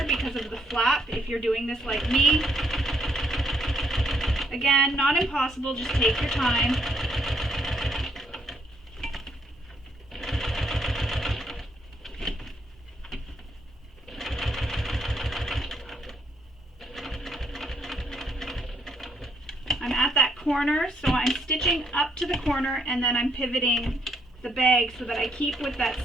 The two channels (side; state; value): both; normal; correlation 0.72